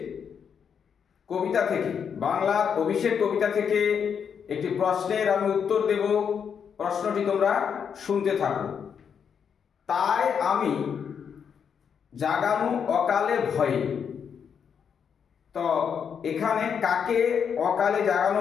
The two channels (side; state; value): right; quieter; 7.2 dB